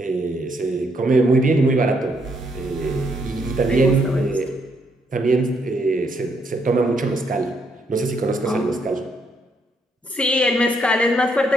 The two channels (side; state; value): both; normal; correlation 0.74